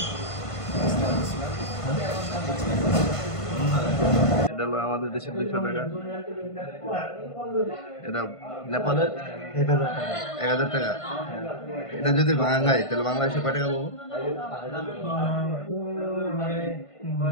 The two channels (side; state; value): right; late; 1.5 ms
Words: এটা হলো আমাদের দেশের 200 টাকা। এটা নেপালের 1000 টাকা। এটা যদি বাংলায়, তাহলে বাংলাদেশে কয় টাকা পাবো?